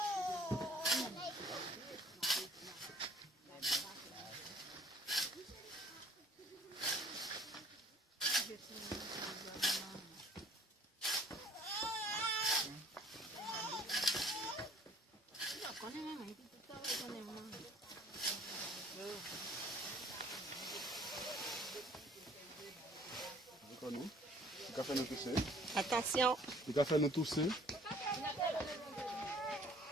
Attention! Le café nous tousser. Si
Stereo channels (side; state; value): both; normal; correlation 0.56